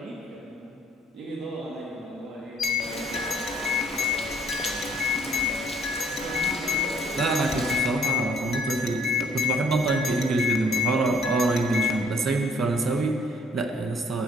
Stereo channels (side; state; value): both; normal; correlation 0.62